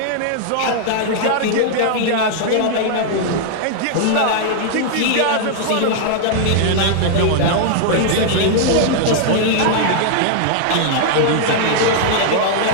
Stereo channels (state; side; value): different; both; correlation -0.01